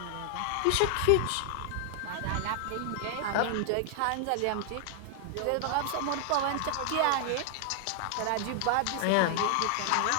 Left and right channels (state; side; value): different; both; correlation 0.00